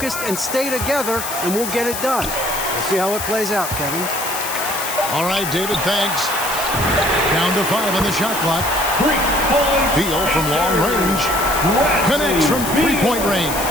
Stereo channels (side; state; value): left; noise; hiss, 6 dB below the sound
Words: and stay together, and we'll get it done. We'll see how it plays out, Kevin. All right, David, thanks. Down to 5 on the shot clock. Beal from long range. Connects from three-point range.